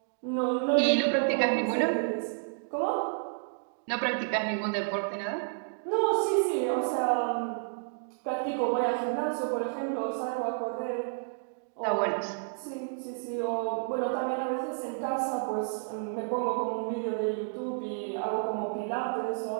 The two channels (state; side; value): silent; left; digital silence